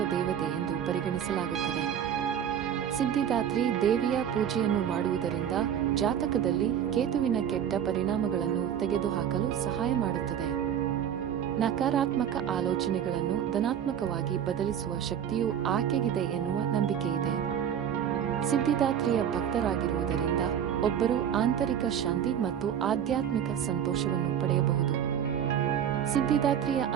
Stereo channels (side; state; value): left; quieter; 9.1 dB